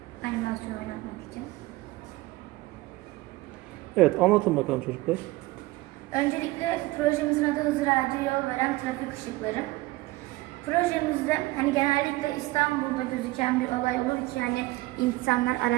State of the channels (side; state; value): left; quieter; 20.0 dB